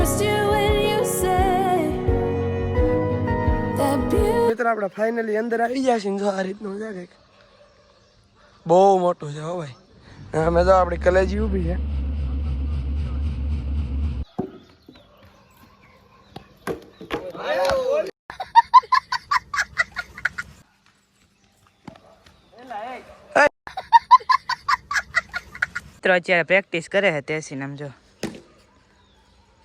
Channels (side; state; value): both; identical; correlation 1.00